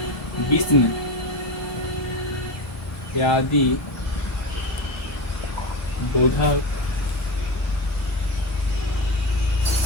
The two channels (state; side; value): late; right; 2.1 ms